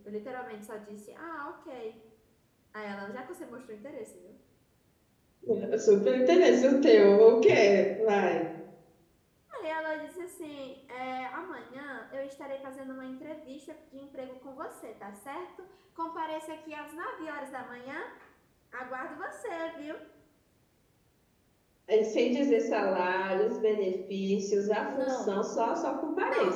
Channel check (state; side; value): identical; both; correlation 1.00